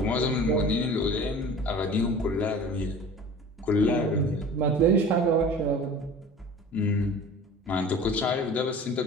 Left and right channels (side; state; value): both; normal; correlation 0.41